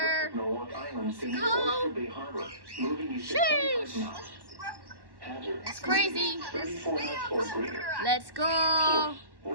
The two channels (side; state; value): left; late; 1.1 ms